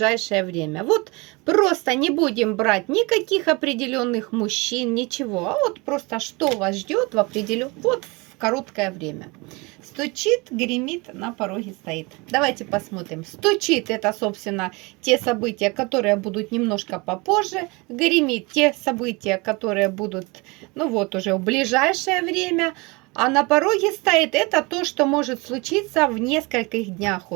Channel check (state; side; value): quieter; left; 26.5 dB